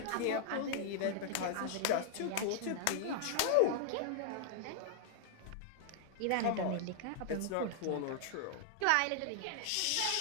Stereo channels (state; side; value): different; both; correlation -0.01